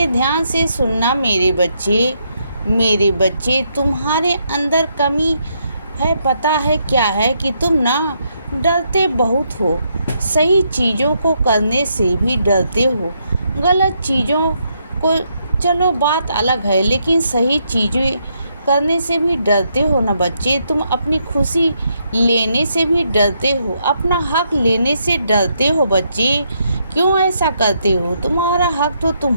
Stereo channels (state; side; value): inverted; both; correlation -0.77